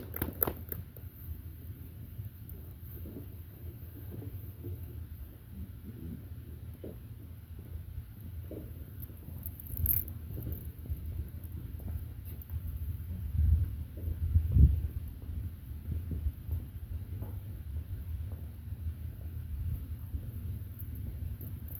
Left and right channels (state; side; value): identical; both; correlation 1.00